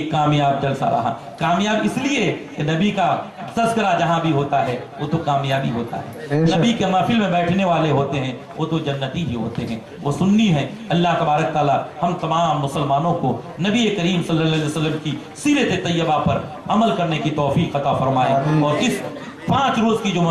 کامیاب جلسہ رہا۔ کامیاب اس لیے کہ نبی کا تذکرہ جہاں بھی ہوتا ہے وہ تو کامیابی ہوتا ہے، نبی کے محفل میں بیٹھنے والے ہوتے ہیں وہ تو جنتی ہی ہوتے ہیں، وہ سنی ہیں۔ اللہ تبارک تعالی ہم تمام مسلمانوں کو نبی کریم صلی اللہ علیہ وسلم کی سیرت طیبہ پر عمل کرنے کی توفیق عطا فرمائے، اور اس 5 روز کی جو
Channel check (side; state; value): both; identical; correlation 1.00